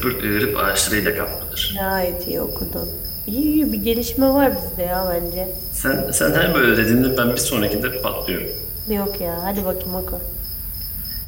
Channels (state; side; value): identical; both; correlation 1.00